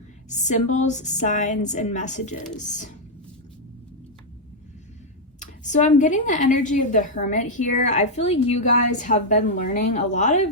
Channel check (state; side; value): normal; both; correlation -0.02